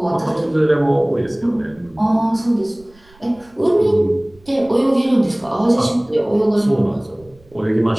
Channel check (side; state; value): right; noise; rumble, 29 dB below the sound